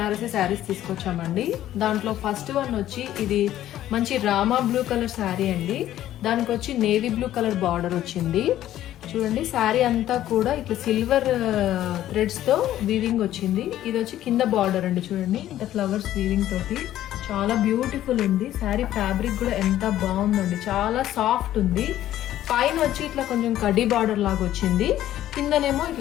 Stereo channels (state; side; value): quieter; right; 12.9 dB